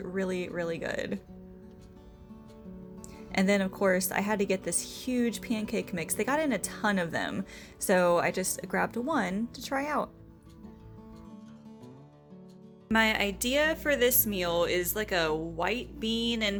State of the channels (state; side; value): identical; both; correlation 1.00